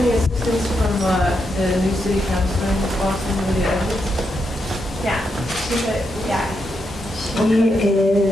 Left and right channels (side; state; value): both; normal; correlation 0.82